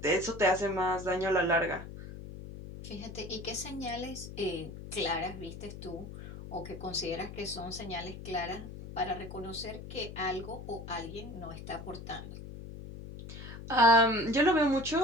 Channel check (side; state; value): left; noise; hum, 11 dB below the sound